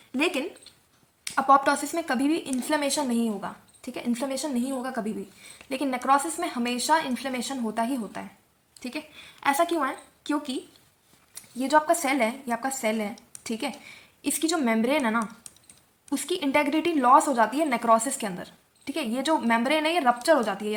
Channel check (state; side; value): identical; both; correlation 1.00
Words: लेकिन अपोप्टोसिस में कभी भी इन्फ्लेमेशन नहीं होगा। ठीक है, इन्फ्लेमेशन नहीं होगा कभी भी। लेकिन नेक्रोसिस में हमेशा इन्फ्लेमेशन होता ही होता है। ठीक है, ऐसा क्यों है? क्योंकि ये जो आपका सेल है, ये आपका सेल है, ठीक है, इसकी जो मेम्ब्रेन है ना, उसकी इंटेग्रिटी लॉस हो जाती है नेक्रोसिस के अंदर। ठीक है, ये जो मेम्ब्रेन है ये रप्चर हो जाती है, ये